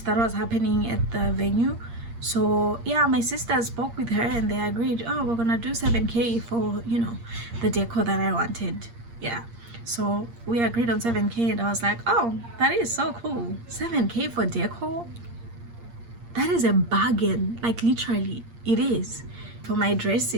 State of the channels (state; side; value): late; left; 8.6 ms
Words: that was happening at the venue. So yeah, my sister spoke with her and they agreed, oh, we're gonna do 7K for, you know, the decor that I wanted. Yeah, so we agreed on 7K and I was like, oh, that is so cool. 7K for decor, that is a bargain. Like literally it is. For my